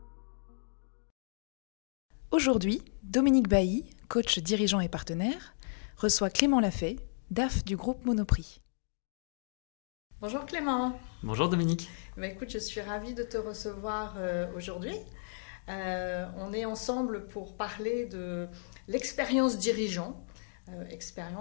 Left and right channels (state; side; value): silent; right; digital silence